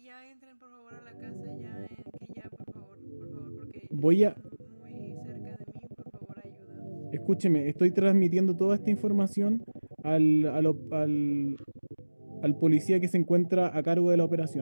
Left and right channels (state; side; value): inverted; both; correlation -1.00